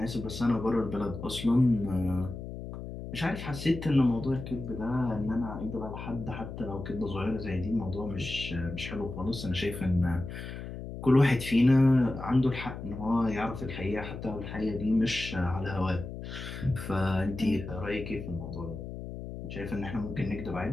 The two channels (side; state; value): left; noise; hum, 9 dB below the sound